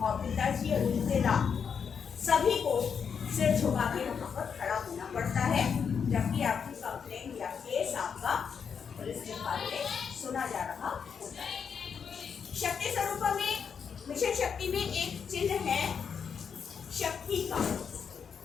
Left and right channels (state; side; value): quieter; right; 6.7 dB